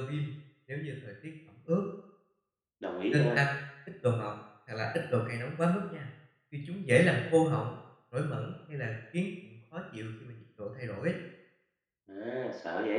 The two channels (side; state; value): both; identical; correlation 1.00